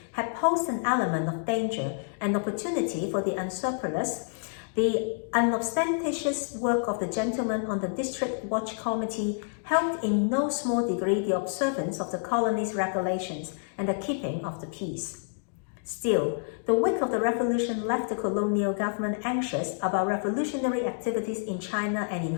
had posed an element of danger and opportunity for the unscrupulous, the unostentatious work of the gentlemen on the District Watch Committee helped in no small degree the observance of the colony's regulations and the keeping of the peace. Still, the wake of the revolution left the colonial government anxious about revolutionary activities in China and in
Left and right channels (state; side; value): silent; right; digital silence